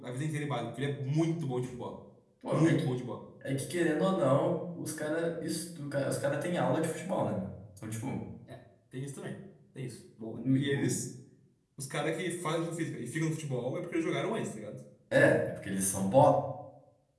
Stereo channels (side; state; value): both; identical; correlation 1.00